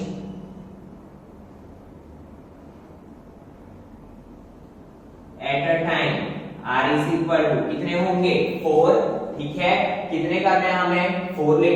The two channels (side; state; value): both; identical; correlation 1.00